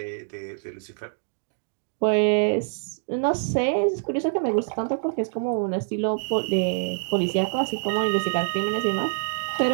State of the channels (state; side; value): silent; left; digital silence